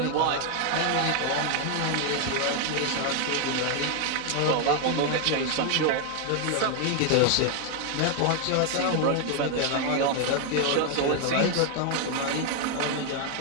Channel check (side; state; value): both; different; correlation 0.01